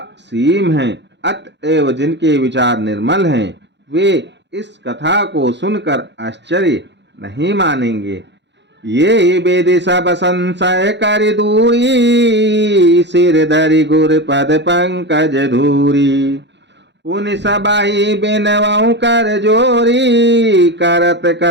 है। अतएव जिनके विचार निर्मल हैं वे इस कथा को सुनकर आश्चर्य नहीं मानेंगे। ये वेद सब संशय कर दूरी, सिर धरि गुर पद पंकज धूरी। उन सबाई बिनवऊ कर जोरी, करत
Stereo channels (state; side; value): late; left; 0.52 ms